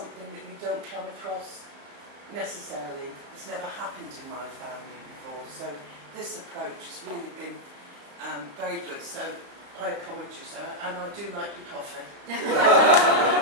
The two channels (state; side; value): late; left; 35 ms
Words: that you don't come across necessarily. It's never happened in my family before, so this approach has really been very good. So I applaud you, sir, and I do like your coffee.